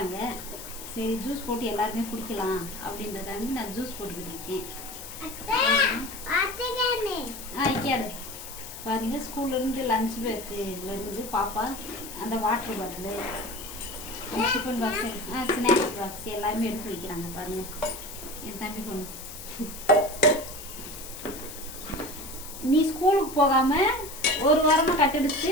சரி ஜூஸ் போட்டு எல்லாருமே குடிக்கலாம் அப்படின்றதாண்டி நான் ஜூஸ் போட்டுக்கிட்டு இருக்கேன். கேடு பாருங்கள், ஸ்கூல்லேருந்து லஞ்ச் பேக்கு வருது பாப்பா. அந்த water bottle, tiffin box, snacks box எல்லாருமே எடுத்து வைக்கிறாங்க பாருங்கள். என் தம்பி பொண்ணு, நீ ஸ்கூலுக்கு போகாமல் ஒரு வாரமாக கட்டடிச்சு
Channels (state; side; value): noise; left; hiss, 12 dB below the sound